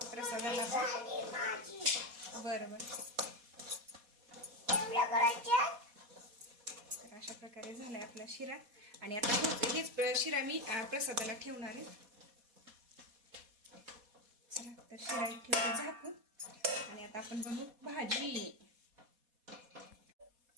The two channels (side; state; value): left; late; 4.2 ms